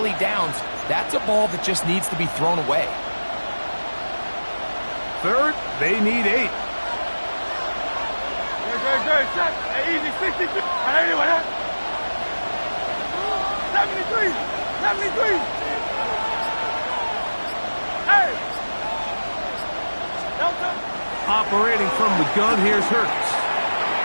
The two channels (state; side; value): inverted; both; correlation -1.00